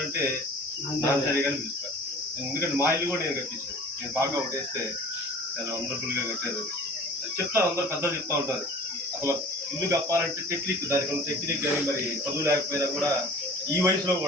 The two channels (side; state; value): both; normal; correlation 0.43